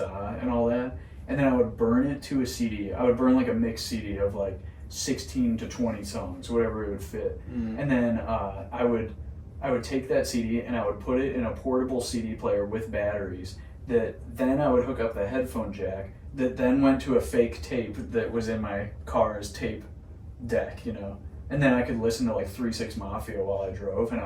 and all that, and then I would burn it to a CD. I would burn like a mixed CD of like 16 to 20 songs, whatever it would fit. And then I would take that CD and I would put it in a portable CD player with batteries. That then I would hook up the headphone jack. That then went to a fake tape that was in my car's tape deck, you know. And then I could listen to like 3 6 Mafia while I drove, and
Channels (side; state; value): both; identical; correlation 1.00